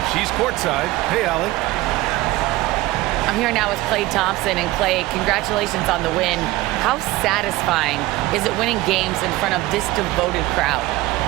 She's courtside. Hey, Allie. I'm here now with Klay Thompson. And Klay, congratulations on the win. How satisfying is it winning games in front of this devoted crowd?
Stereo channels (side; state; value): left; quieter; 18.3 dB